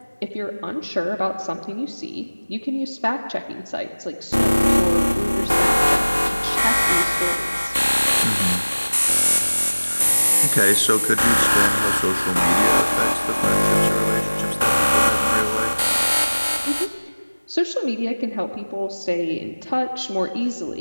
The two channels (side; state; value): both; inverted; correlation -1.00